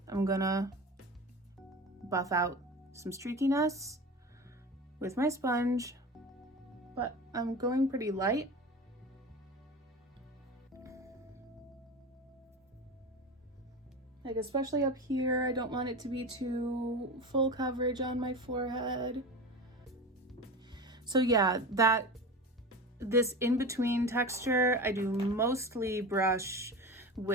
I'm gonna buff out some streakiness with my sponge, but I'm going pretty light. Like especially up here, I don't want it to be too full coverage on my forehead. So yeah, this in-between texture, I do mostly brush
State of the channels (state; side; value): normal; both; correlation 0.29